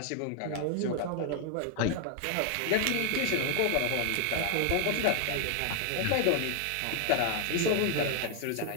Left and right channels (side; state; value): both; different; correlation 0.00